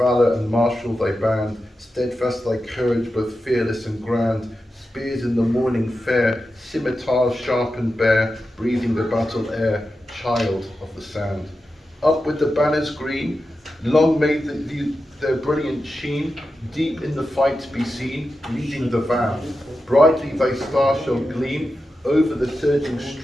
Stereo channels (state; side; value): normal; both; correlation 0.91